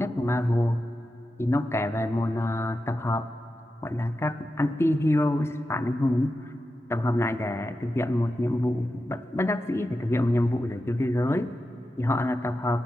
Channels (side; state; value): both; normal; correlation 0.90